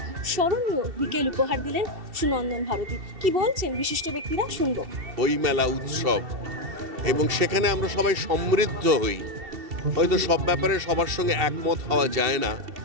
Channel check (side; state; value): left; late; 2.7 ms